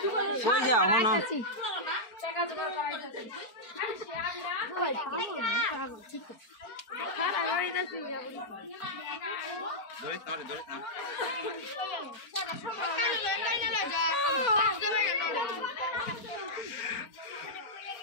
কই যাও হনো টাকা জোগাড় করাইতেছি আরে সে আবিরা কই ঠিক আছে হ্যাঁ করাইতেছি ধরিস না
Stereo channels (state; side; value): late; right; 4.4 ms